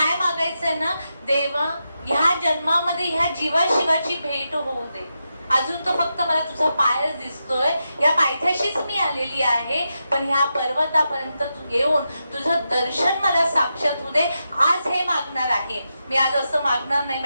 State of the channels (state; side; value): inverted; both; correlation -0.87